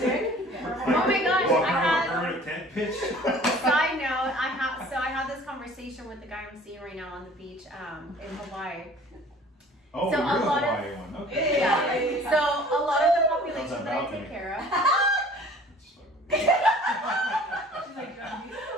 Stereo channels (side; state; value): both; normal; correlation 0.49